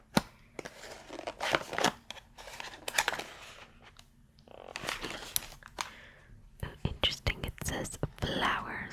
Interesting. It says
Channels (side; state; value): both; identical; correlation 1.00